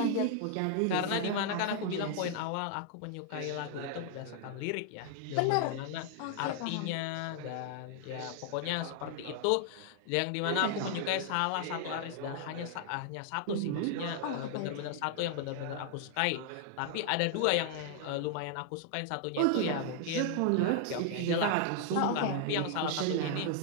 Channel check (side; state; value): both; different; correlation 0.00